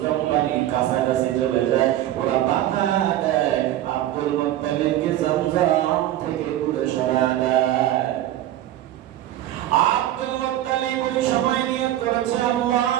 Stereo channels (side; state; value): left; quieter; 13.3 dB